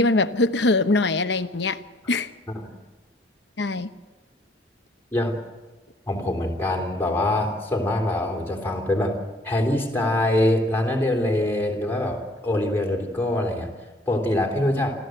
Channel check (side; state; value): both; normal; correlation 0.59